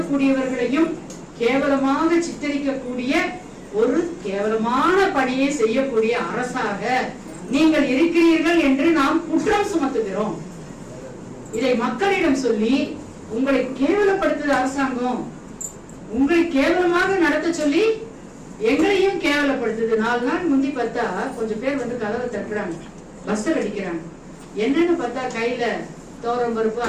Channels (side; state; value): both; identical; correlation 1.00